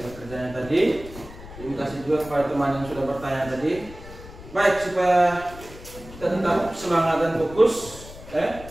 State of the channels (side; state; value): left; noise; rumble, 16 dB below the sound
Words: kerjanya tadi. Terima kasih juga kepada teman yang sudah bertanya tadi. Baik, supaya kita tetap semangat dan fokus,